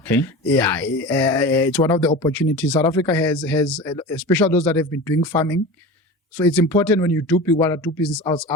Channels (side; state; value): both; normal; correlation 0.31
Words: Yeah. It's one of the opportunities. South Africa has, especially those that have been doing farming. So it's important when you want to do business